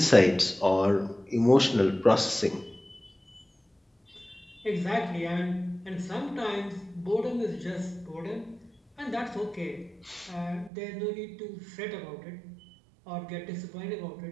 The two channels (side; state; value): left; drops out; at 10.7 s